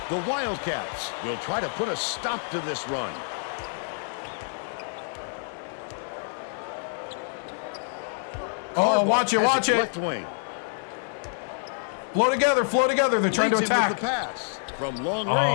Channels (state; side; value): silent; right; digital silence